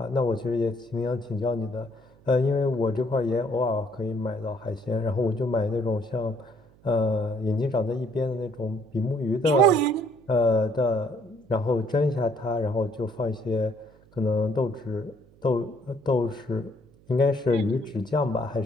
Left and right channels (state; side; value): noise; right; hum, 28 dB below the sound